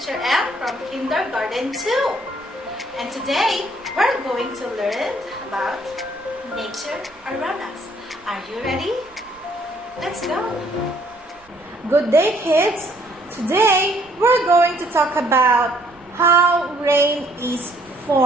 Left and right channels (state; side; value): noise; right; rumble, 30 dB below the sound